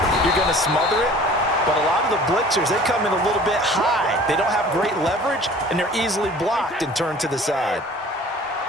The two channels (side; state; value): both; normal; correlation 0.47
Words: you're going to smother it. But a lot of the blitzers, they come in a little bit high. They don't have great leverage, and they're easily blocked and turned to the side.